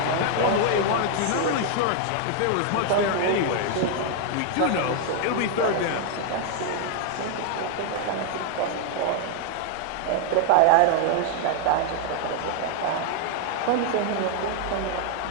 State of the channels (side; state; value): both; different; correlation 0.00